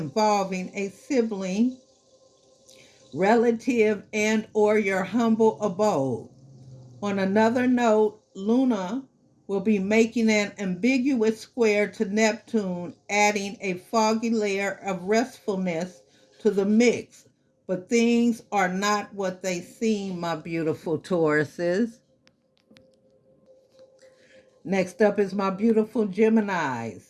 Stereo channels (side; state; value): both; identical; correlation 1.00